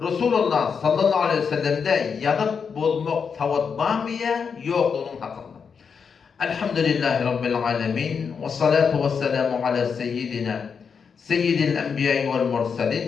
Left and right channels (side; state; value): right; quieter; 6.2 dB